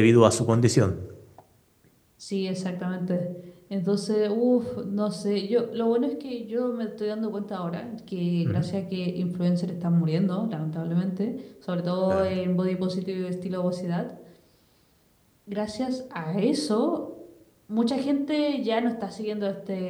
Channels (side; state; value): both; identical; correlation 1.00